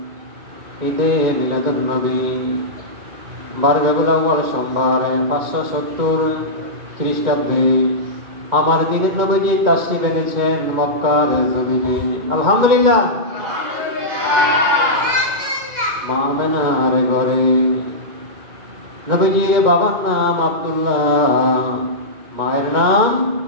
ঈদে মিলাদুন নবী 12 রবিউল আউয়াল সোমবার 570 খ্রিস্টাব্দে আমার দিনের নবীজি তাশরীফ এনেছেন মক্কার জমিনে আলহামদুলিল্লাহ। মা আমেনার ঘরে নবীজির বাবার নাম আব্দুল্লাহ, মায়ের নাম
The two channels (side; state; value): left; late; 2.1 ms